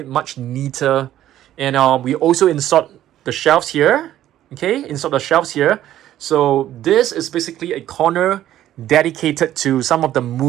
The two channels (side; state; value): left; quieter; 12.6 dB